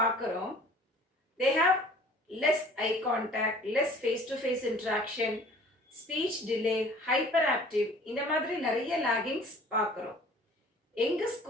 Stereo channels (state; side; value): normal; both; correlation 0.50